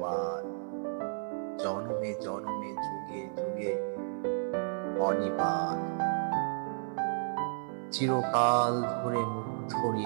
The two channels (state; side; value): silent; left; 56 dB below the other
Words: জনমে জনমে যুগে যুগে অনিবার। চিরকাল ধরে মুগ্ধ